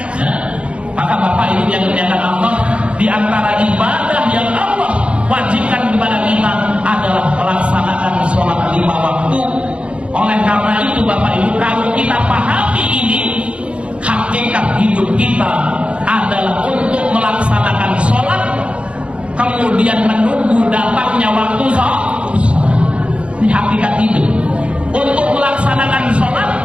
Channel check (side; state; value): left; late; 0.060 ms